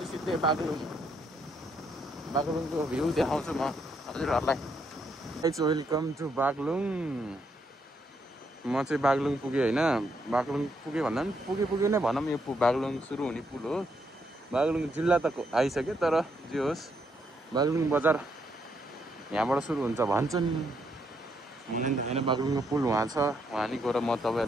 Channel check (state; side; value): normal; both; correlation 0.75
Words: सिधै बागलुङको भ्यू देखाउँछु म हजुरहरूलाई। Welcome to Baglung. म चाहिँ बागलुङ पुगेँ होइन। बागलुङ पुगेँ भन्दा पनि पुगे नै भनौँ, यो बागलुङ सुरु हुने पुल हो। बागलुङ जिल्ला त आइसक्यो, तर जे होस् बागलुङ बजार यहाँबाट सुरु हुन्छ भन्छन्। होइन बागलुङको पुल वहाँ छ, वहाँ नि गएर म